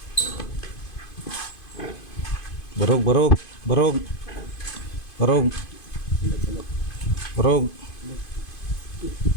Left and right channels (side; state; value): right; late; 2.5 ms